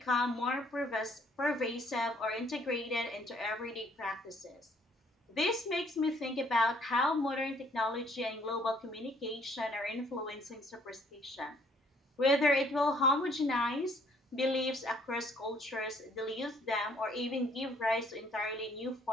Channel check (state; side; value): normal; both; correlation 0.63